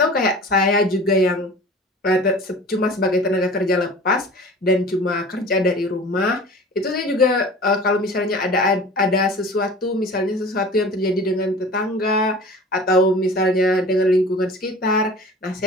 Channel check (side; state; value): both; normal; correlation 0.41